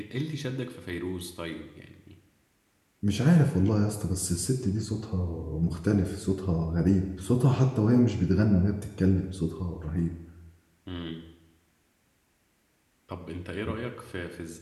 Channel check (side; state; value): both; identical; correlation 1.00